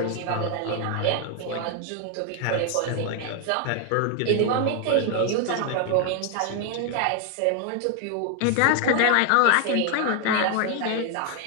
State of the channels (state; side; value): different; both; correlation 0.00